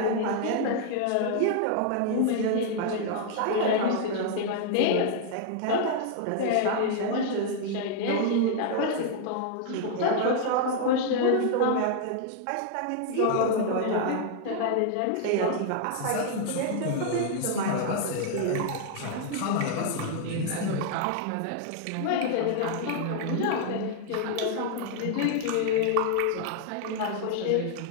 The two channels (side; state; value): both; different; correlation 0.00